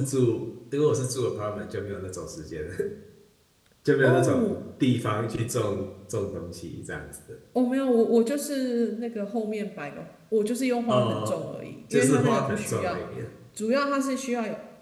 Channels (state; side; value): identical; both; correlation 1.00